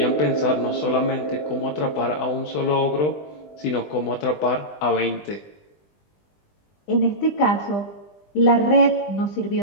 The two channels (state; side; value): late; right; 20 ms